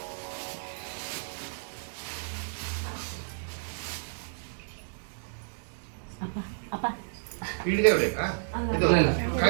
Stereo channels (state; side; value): silent; left; digital silence